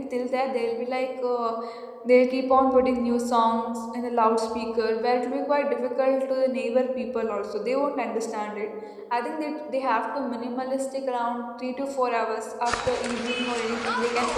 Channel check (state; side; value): identical; both; correlation 1.00